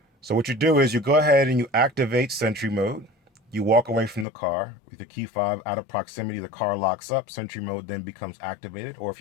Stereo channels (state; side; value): drops out; right; at 4.2 s